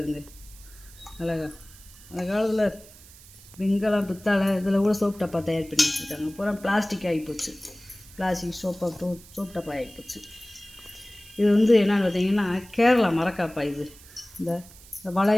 அழகா. அந்த காலத்தில் வெங்கலம் பித்தளை இதில் கூட சோப் டப்பா தயார் பண்ணி வச்சுருக்காங்க. பூரா பிளாஸ்டிக் ஆகிப்போச்சு. பிளாஸ்டிக் சோப் டப்பா ஆகிப்போச்சு. இது வந்து என்னென்னு பார்த்தீங்கன்னா கேரளா மரக்காப்பா. இது இந்த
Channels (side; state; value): right; noise; hiss, 21 dB below the sound